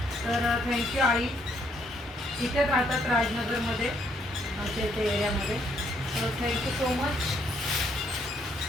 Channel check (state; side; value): normal; both; correlation 0.71